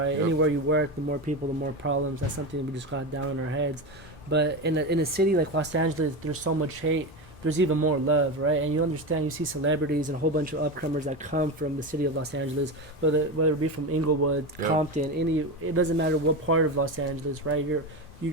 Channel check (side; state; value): both; normal; correlation 0.19